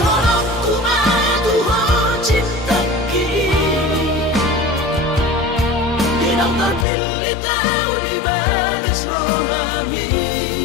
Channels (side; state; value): right; drops out; at 6.9 s